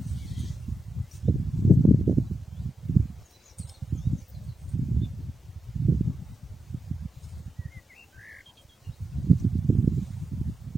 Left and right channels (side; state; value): both; normal; correlation 0.89